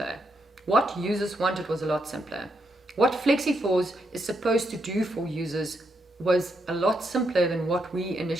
What users wanted was a lot simpler. What Flexyforce is supposed to do for users was a lot simpler than what we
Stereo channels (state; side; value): normal; both; correlation 0.80